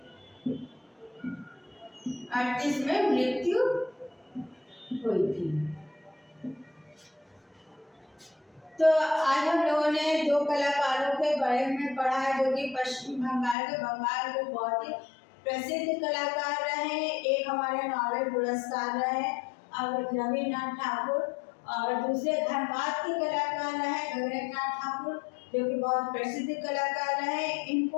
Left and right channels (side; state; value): right; drops out; at 13.6 s